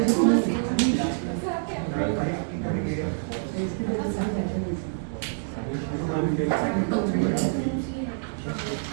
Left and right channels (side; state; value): left; silent; digital silence